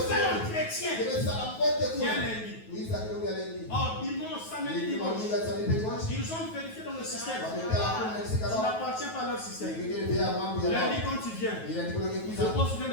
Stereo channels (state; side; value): late; right; 9.3 ms